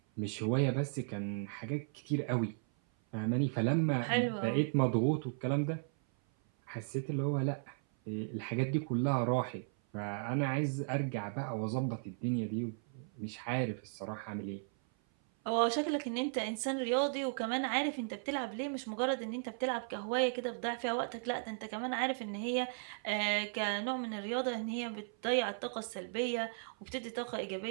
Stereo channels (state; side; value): silent; left; 54 dB below the other